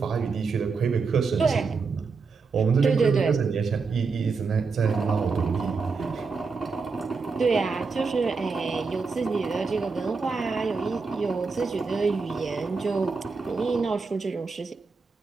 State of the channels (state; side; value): quieter; left; 4.7 dB